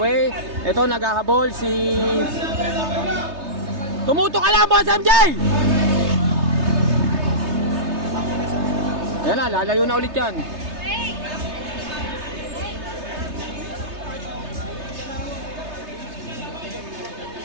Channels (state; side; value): late; left; 3.3 ms